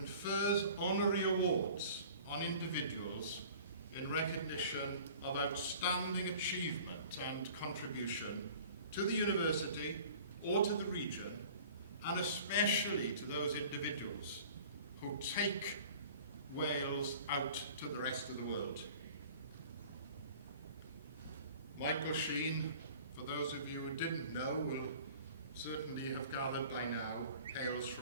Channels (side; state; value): both; inverted; correlation -0.46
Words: honorary awards on individuals in recognition of outstanding achievement and contribution to the university or to the region, and especially to those individuals who take Wales out to the rest of the world. Michael Sheen, for those of you who didn't know, will certainly have gathered by now, hails